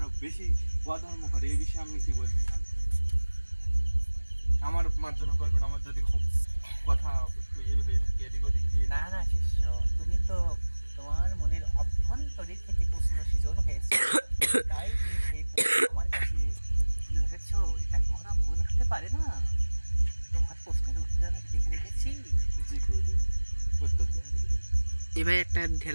বেশি অধর্ম করে, এই বিষয়ে আপনি কি বলতেছেন? আমার মার্জনা করবেন, আমার যদি খুব কথা একটু হয়ে থাকে এদিক ওদিক দিয়ে। না না শিষ্য, তুমি তো তোমার মনের অভ্যন্তরীণ থেকে প্রশ্ন সৃজন হয়েছে, তাই তুমি সেই প্রশ্ন আমার কাছে তুলে ধরেছো। এটা কখনো ভুল হতে পারে না। তোমার প্রশ্নের উত্তর আমি লিখে রেখেছি। জি গুরুদেব, উত্তর দেন গুরুদেব। এবার একটা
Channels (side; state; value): both; inverted; correlation -1.00